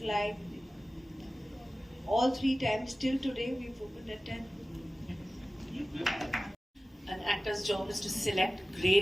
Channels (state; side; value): normal; both; correlation 0.96